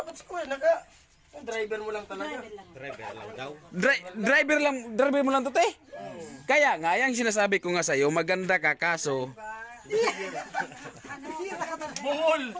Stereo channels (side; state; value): both; identical; correlation 1.00